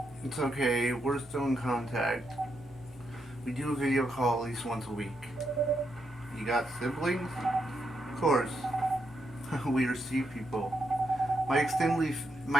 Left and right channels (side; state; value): both; normal; correlation 0.81